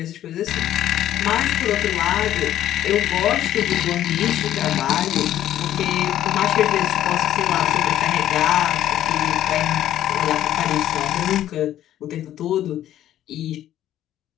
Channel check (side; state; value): right; quieter; 12.2 dB